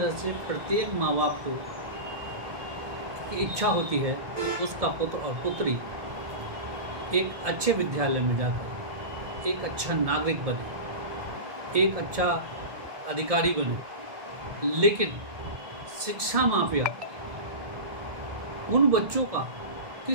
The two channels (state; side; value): late; left; 1.7 ms